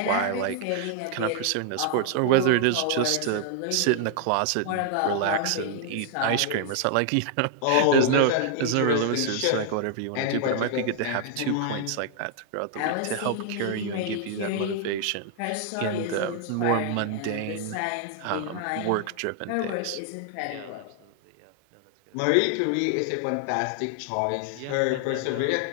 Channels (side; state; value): both; different; correlation 0.00